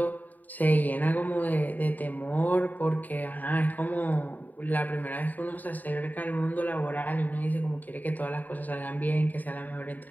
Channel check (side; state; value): right; late; 0.082 ms